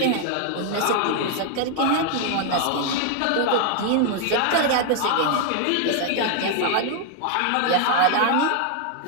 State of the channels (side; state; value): both; different; correlation 0.00